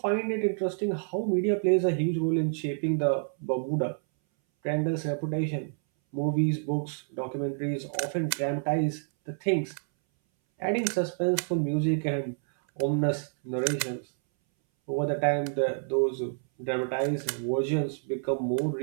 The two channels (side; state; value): left; silent; 59 dB below the other